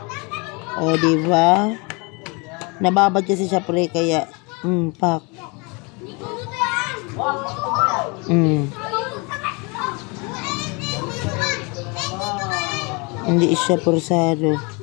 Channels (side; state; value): right; quieter; 29.8 dB